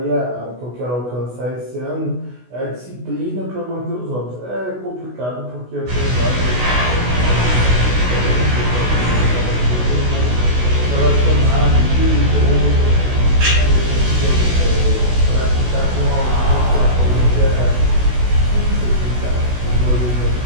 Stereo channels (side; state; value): left; late; 16 ms